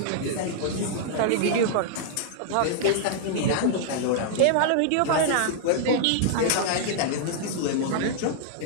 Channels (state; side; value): different; both; correlation -0.01